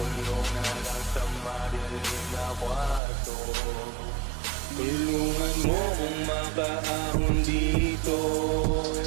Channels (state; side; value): drops out; left; at 3.0 s